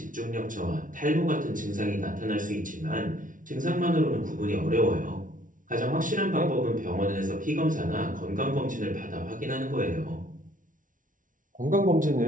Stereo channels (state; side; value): late; left; 0.38 ms